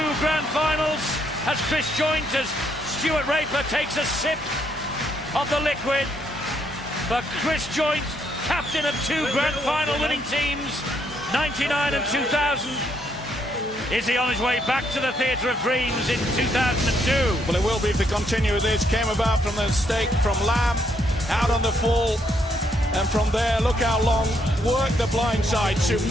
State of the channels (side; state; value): both; normal; correlation 0.73